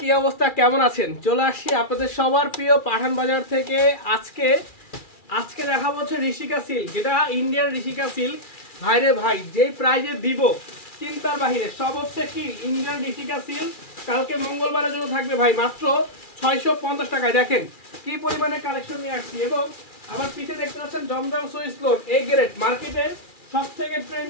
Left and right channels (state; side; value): late; right; 2.4 ms